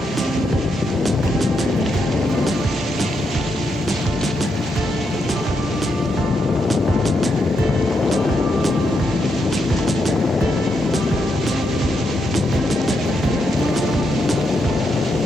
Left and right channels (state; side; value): normal; both; correlation 0.81